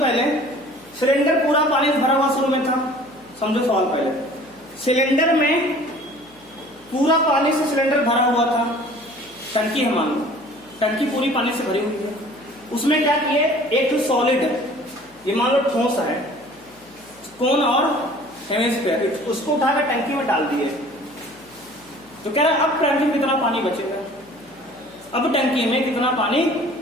सिलेंडर पूरा पानी से भरा हुआ शुरू में था, समझो सवाल पहले। सिलेंडर में पूरा पानी से सिलेंडर भरा हुआ था, टंकी है, मान लो टंकी पूरी पानी से भरी हुई है। उसमें क्या किए, एक सॉलिड, ये मान लो ठोस है, कोन और हेमिस्फेयर, उसको उठाकर टंकी में डाल दिए। तो कह रहा है अब टंकी में कितना पानी बचेगा, अब टंकी में कितना पानी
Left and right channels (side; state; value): left; noise; hum, 28 dB below the sound